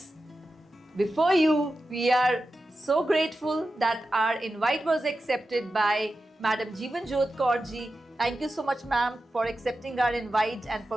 before you, we are so grateful that our invite was accepted by Madam Jeevan Jyot Kaur ji. Thank you so much, ma'am, for accepting our invite and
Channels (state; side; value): normal; both; correlation 0.92